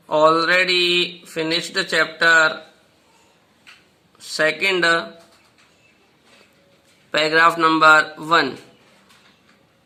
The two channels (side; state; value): both; identical; correlation 1.00